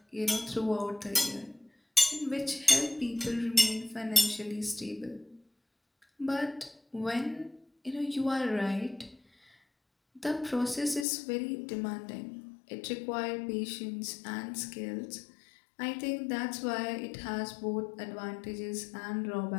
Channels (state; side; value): drops out; right; at 11.1 s